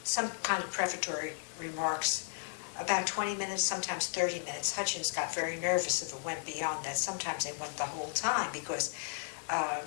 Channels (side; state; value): right; silent; digital silence